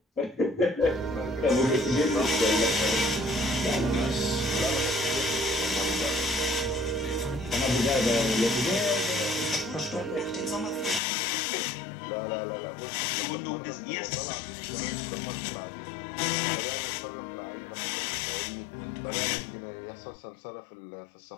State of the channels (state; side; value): drops out; right; at 11.0 s